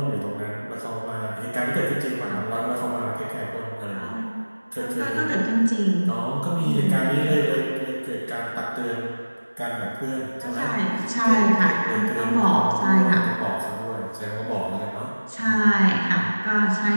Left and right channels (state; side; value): inverted; both; correlation -1.00